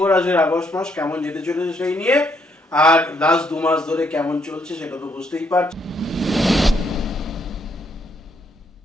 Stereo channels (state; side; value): normal; both; correlation 0.72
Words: রাশির আগস্ট মাস কেমন যেতে চলেছে সেই নিয়ে, আর লাস্ট 2 মাস ধরে কেমন চলছে সেটা তো বুঝতেই পারছেন।